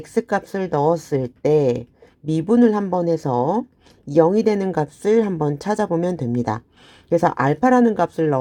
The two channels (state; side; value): identical; both; correlation 1.00